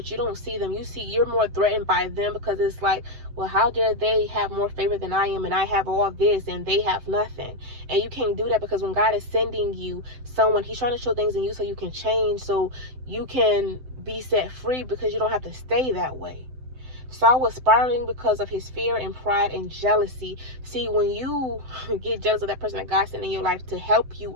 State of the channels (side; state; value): left; late; 7.7 ms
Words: you don't see them. You're more threatened by them because it's like, well, how dare they have more favor than I am, and I have all this and they have nothing. And you can't do that because when God is sending you someone, he's trying to show things in you so you can change, so you can be set free because you don't have to stay that way. Saul was spiraling because of his fear and pride and jealousy. See, when you get jealous of that person that God sent in your life to help you